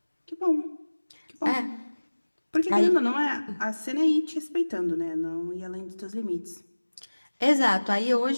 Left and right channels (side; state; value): both; inverted; correlation -1.00